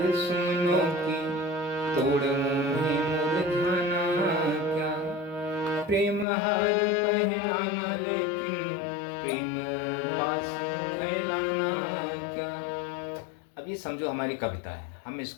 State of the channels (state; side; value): drops out; right; at 6.2 s